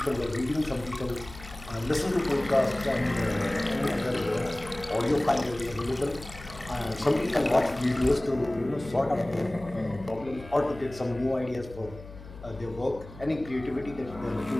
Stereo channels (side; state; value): left; noise; hum, 16 dB below the sound